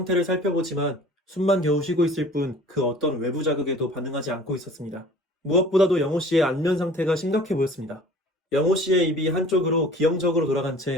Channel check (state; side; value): normal; both; correlation 0.46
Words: 살펴보지만 숨만 겨우 쉬고 있을 뿐 그 어떤 외부 자극에도 반응하지 않고 있었습니다. 무엇보다도 영호 씨의 안면 상태가 심각해 보였습니다. 영호 씨의 입이 한쪽으로 기형적으로 돌아간